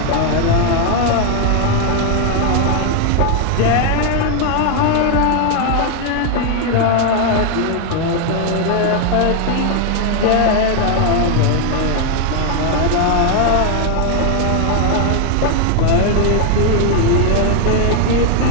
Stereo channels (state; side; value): different; both; correlation 0.00